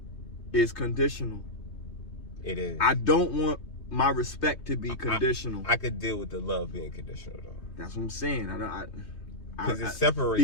is conditional. It is. I don't want my respect to be conditional. I could deal with the love being conditional though. That's what I'm saying. Because it separates.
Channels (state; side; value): late; right; 3.2 ms